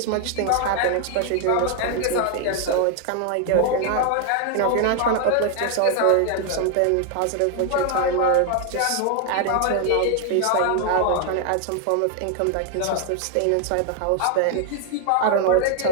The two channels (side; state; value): both; different; correlation 0.00